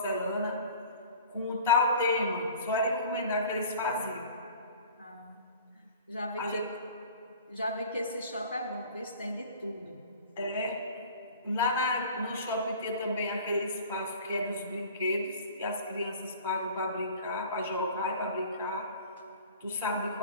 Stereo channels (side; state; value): both; inverted; correlation -0.44